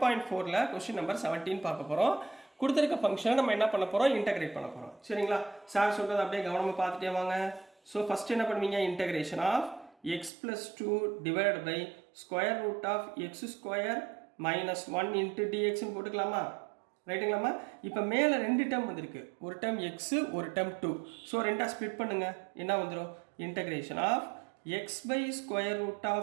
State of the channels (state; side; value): drops out; left; at 10.3 s